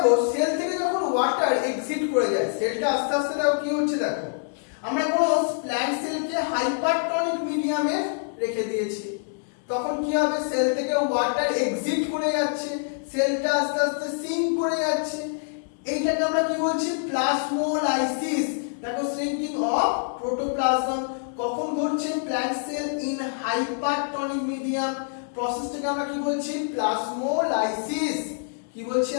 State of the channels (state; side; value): silent; right; digital silence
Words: সেল থেকে যখন ওয়াটার এক্সিট করে যায়, সেলটা আস্তে আস্তে দেখো কি হচ্ছে, দেখো আমরা কোনো প্ল্যান্ট সেলকে হাইপারটনিক মিডিয়ামে রেখে দিয়েছি, তখন কি হবে, সেল থেকে ওয়াটার এক্সিট করে যাচ্ছে, সেলটা আস্তে আস্তে সিঙ্ক করে যাচ্ছে, এইটাকে আমরা কি বলছি, প্লাজমোলাইসিস। দেখো শ্রিঙ্কিং অফ প্রোটোপ্লাজম কখন ঘটছে, plant cell in hypertonic medium, প্রসেসটাকে আমরা কি বলছি, প্লাজমোলাইসিস। কি বলছি